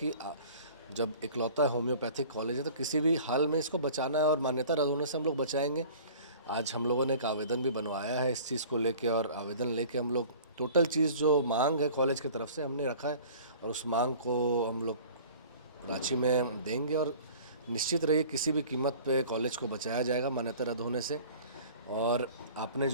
जब इकलौता होम्योपैथिक कॉलेज है तो किसी भी हाल में इसको बचाना है, और मान्यता रद्द होने से हम लोग बचाएंगे। आज हम लोगों ने एक आवेदन भी बनवाया है इस चीज़ को लेके, और आवेदन लेके हम लोग टोटल चीज़ जो मांग है कॉलेज की तरफ से हमने रखा है, और उस मांग को हम लोग रांची में देंगे, और निश्चित रहिए किसी भी कीमत पे कॉलेज को बचाया जाएगा मान्यता रद्द होने से। और आपने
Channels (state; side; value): inverted; both; correlation -0.45